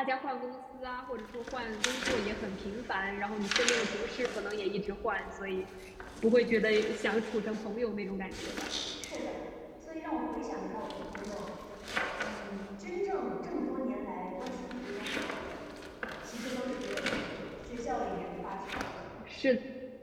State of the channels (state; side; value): identical; both; correlation 1.00